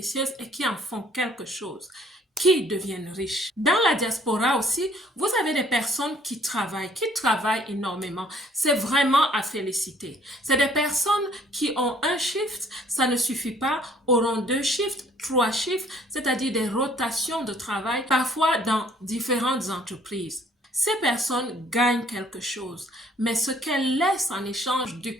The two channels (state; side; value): normal; both; correlation 0.59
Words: et qui en font quelque chose, qui deviennent riches. Dans la diaspora aussi, vous avez des personnes qui travaillent énormément. C'est vraiment à féliciter. C'est des personnes qui ont un shift, ça ne suffit pas, auront 2 shifts, 3 shifts, c'est-à-dire des rotations de travail, parfois dans différentes entreprises. Ces personnes gagnent quelque chose, mais ce qu'elles laissent en échange de